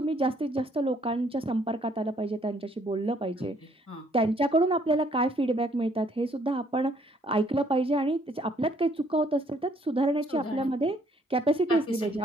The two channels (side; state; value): both; normal; correlation 0.65